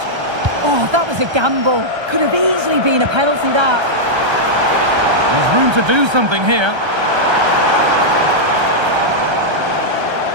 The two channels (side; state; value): left; late; 1.3 ms